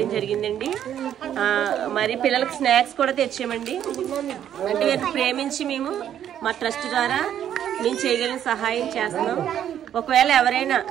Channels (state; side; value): quieter; left; 10.2 dB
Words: జరిగిందండి. మరి పిల్లలకు స్నాక్స్ కూడా తెచ్చామండి. అంటే వీరిని ప్రేమించి మేము మా ట్రస్ట్ ద్వారా మేము చేయగలిగిన సహాయం చేస్తున్నాం. ఒకవేళ ఎవరైనా